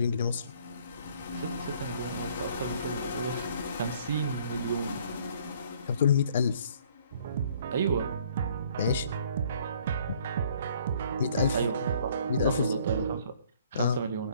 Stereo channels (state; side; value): inverted; both; correlation -0.59